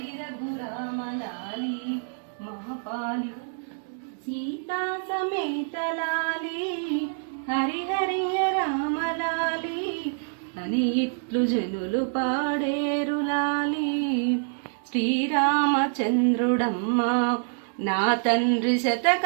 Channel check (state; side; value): silent; left; digital silence